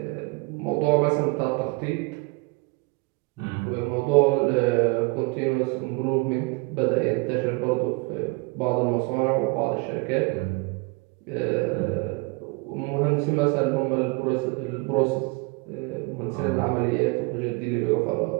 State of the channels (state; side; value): quieter; left; 28.6 dB